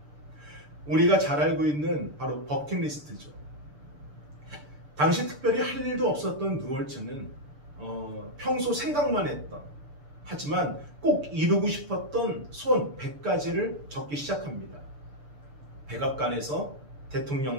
우리가 잘 알고 있는 바로 버킷리스트죠. 당시 특별히 할 일도 없었던 누월츠는 평소 생각만 했던 하지만 꼭 이루고 싶었던 소원 100가지를 적기 시작합니다. 백악관에서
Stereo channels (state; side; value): late; left; 6.8 ms